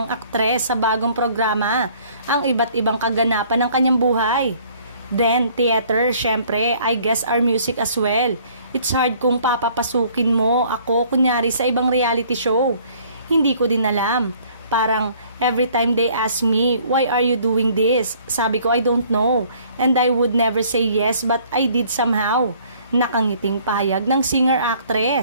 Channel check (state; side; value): inverted; both; correlation -0.58